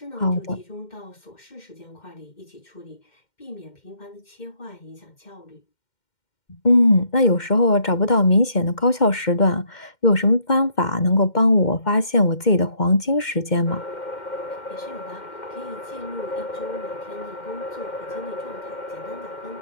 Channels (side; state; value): right; late; 2.1 ms